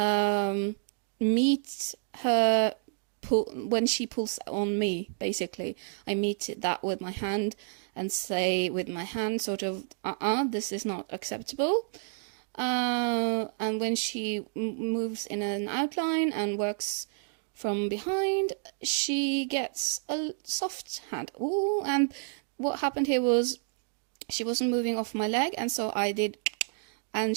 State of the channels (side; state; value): left; silent; digital silence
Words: meet her when she pulls on me, basically. I meet that with my hand and say with my hand sort of, this is not acceptable. And when she moves in an outline and works from behind, she gets a soft hand. Ooh, and what happened here was she wasn't moving off my leg, and so I did, and